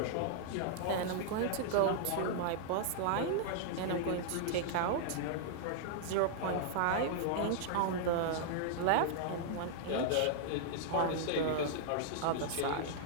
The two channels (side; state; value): both; different; correlation -0.01